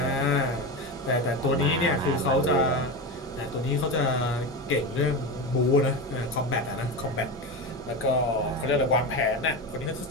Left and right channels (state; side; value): normal; both; correlation 0.20